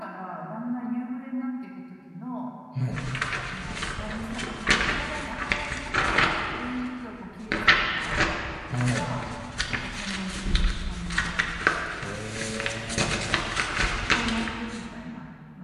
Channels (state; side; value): identical; both; correlation 1.00